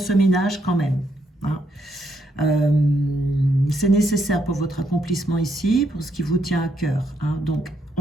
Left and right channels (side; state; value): both; normal; correlation 0.76